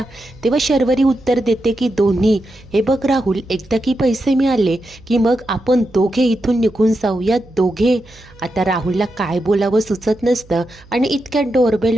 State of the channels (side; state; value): right; noise; hum, 25 dB below the sound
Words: तेव्हा शर्वरी उत्तर देते की दोन्ही. हे बघ राहुल, एकदा की पैसे मिळाले की मग आपण दोघे इथून निघून जाऊया, दोघे. आता राहुलला काय बोलावं सुचत नसतं आणि इतक्यात डोरबेल